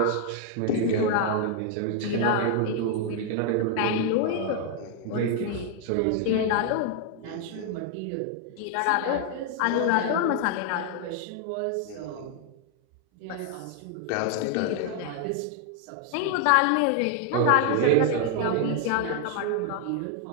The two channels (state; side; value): different; both; correlation 0.00